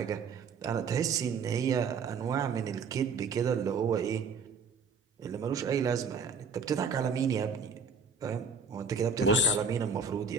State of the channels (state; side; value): quieter; left; 5.0 dB